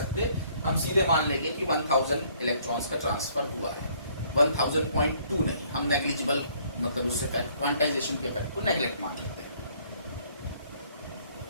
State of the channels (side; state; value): both; inverted; correlation -0.63